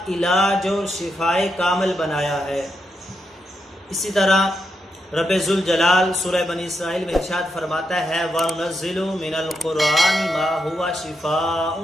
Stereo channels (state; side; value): normal; both; correlation 0.83